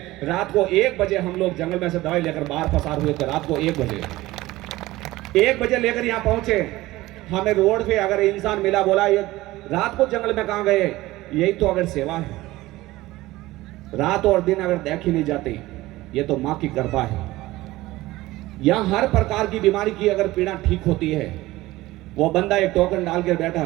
रात को 1 बजे हम लोग जंगल में से दवाई लेकर बाहर पसार हुए थे। रात को 1 बजे लेकर यहाँ पहुंचे। हमें रोड पे अगर इंसान मिला, बोला ये रात को जंगल में कहां गए? यही तो अगर सेवा है। रात और दिन अगर देखी नहीं जाती, ये तो माँ की कृपा है। यहां हर प्रकार की बीमारी की अगर पीड़ा ठीक होती है। वो बंदा एक टोकन डाल कर बैठा,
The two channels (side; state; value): left; quieter; 18.0 dB